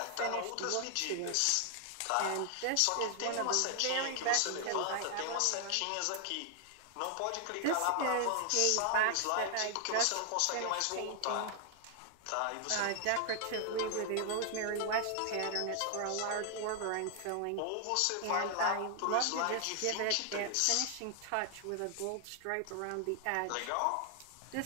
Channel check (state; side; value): different; both; correlation 0.00